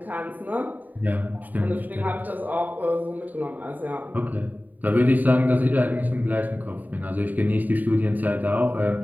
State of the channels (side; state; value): left; late; 0.084 ms